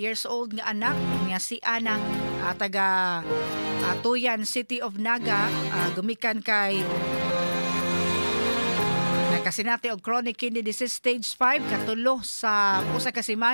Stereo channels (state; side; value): inverted; both; correlation -1.00